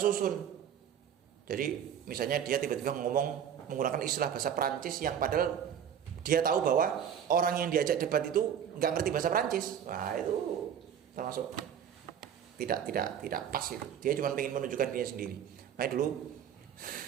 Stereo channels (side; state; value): left; quieter; 8.8 dB